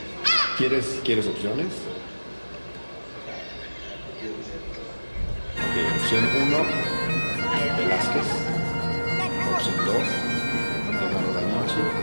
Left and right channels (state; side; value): inverted; both; correlation -1.00